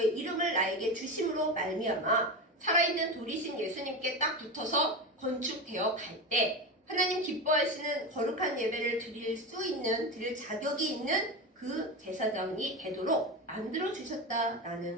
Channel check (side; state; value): both; normal; correlation 0.21